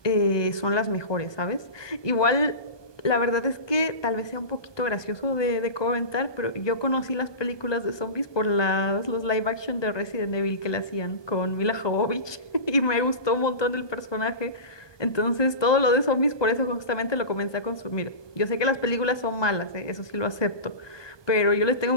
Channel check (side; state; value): right; late; 1.2 ms